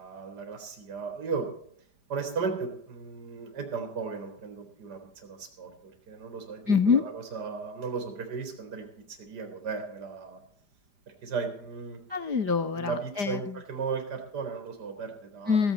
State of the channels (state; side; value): late; left; 5.0 ms